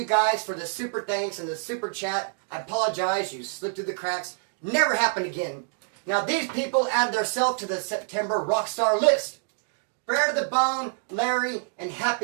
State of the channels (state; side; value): silent; left; digital silence